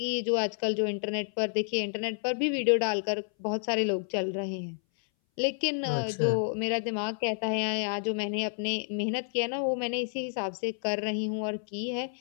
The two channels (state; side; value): silent; right; 58 dB below the other